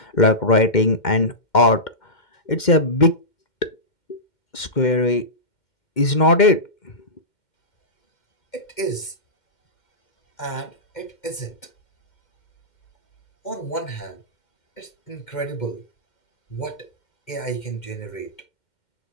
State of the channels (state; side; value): late; right; 2.1 ms